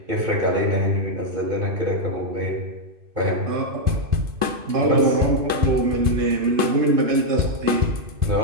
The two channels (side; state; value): left; late; 2.6 ms